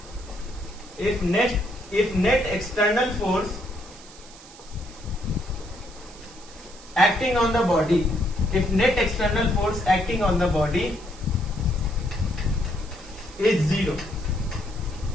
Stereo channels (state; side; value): noise; right; hiss, 20 dB below the sound